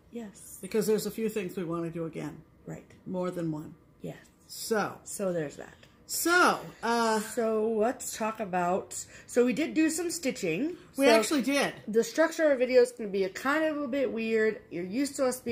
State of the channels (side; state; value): both; identical; correlation 1.00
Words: Yes. Because there's a few things we want to do again. Right. More than one. Yes. So there's that. So let's talk about, we did do some stitching. We actually did. The structure of our video is going to be kind of a bit weird. You're used to us